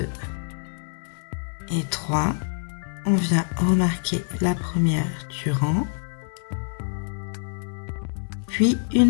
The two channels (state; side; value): silent; right; digital silence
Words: et 3. On vient remarquer la première du rang, puis